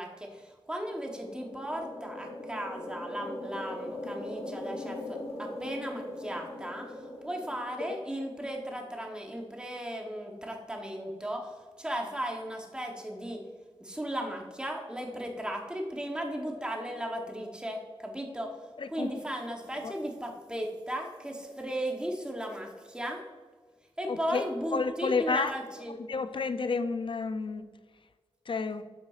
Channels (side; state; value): both; normal; correlation 0.73